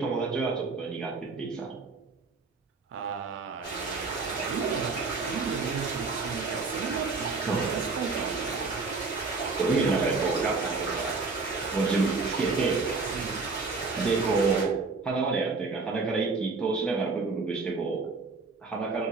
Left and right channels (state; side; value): quieter; left; 4.1 dB